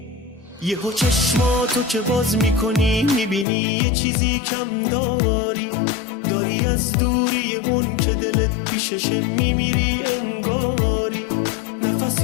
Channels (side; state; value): right; drops out; at 3.5 s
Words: یهو چشماتو که باز میکنی میبینی یه چیزی کم داری از دوری اون که دلت پیششه میمیری انگاری.